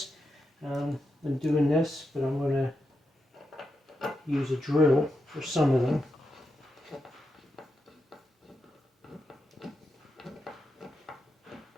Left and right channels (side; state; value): both; normal; correlation 0.86